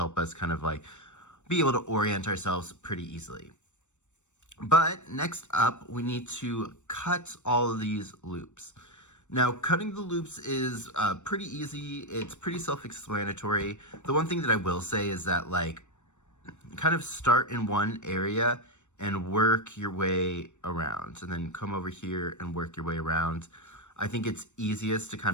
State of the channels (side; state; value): right; late; 0.84 ms